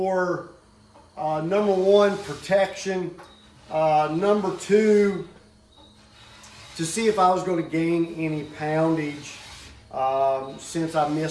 number 1, protection. Number 2, to see if I was going to gain any poundage since I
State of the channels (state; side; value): identical; both; correlation 1.00